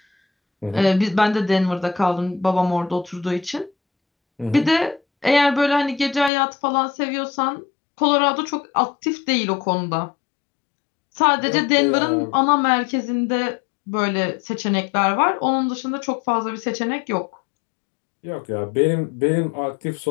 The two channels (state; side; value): drops out; right; at 6.3 s